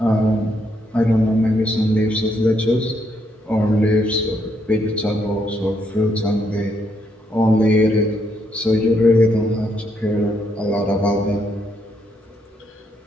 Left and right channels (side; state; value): both; normal; correlation 0.75